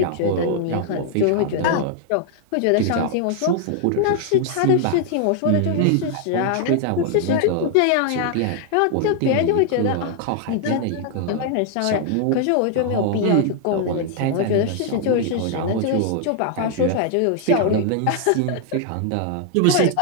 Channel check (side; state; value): both; different; correlation 0.00